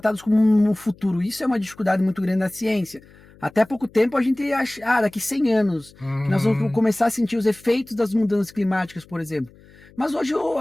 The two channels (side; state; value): left; noise; hum, 25 dB below the sound